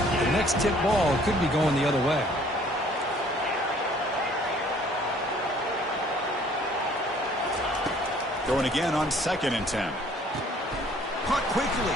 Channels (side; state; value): both; normal; correlation 0.57